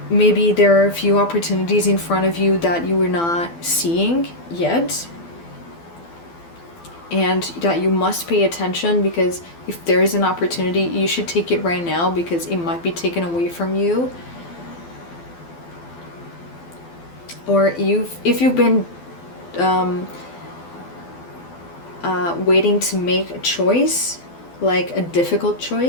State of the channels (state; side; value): late; right; 12 ms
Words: Maybe there are a few opportunities in front of you that you are not seeing yet, and that you must pay attention, because if there is an opportunity, you should take it right now, because it might be taken away from you. Or if you've been waiting to make a choice, like a difficult